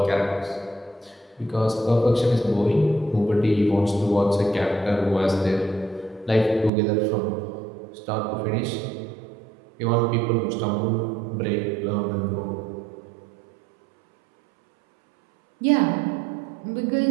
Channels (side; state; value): left; drops out; at 6.7 s